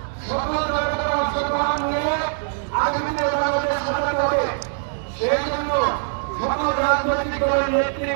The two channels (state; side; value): silent; left; digital silence